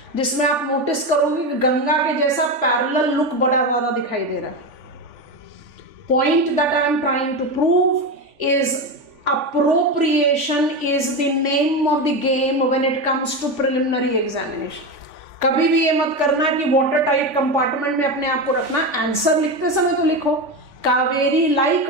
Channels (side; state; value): left; late; 3.5 ms